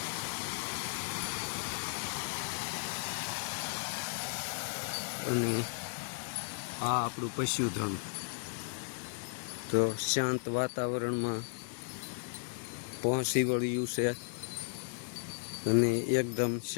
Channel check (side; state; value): right; silent; digital silence